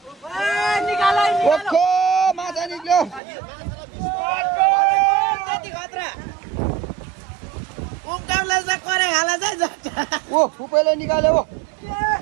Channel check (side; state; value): left; drops out; at 3.2 s